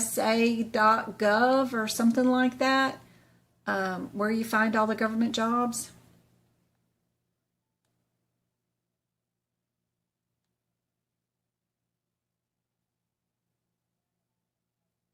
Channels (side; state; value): both; identical; correlation 1.00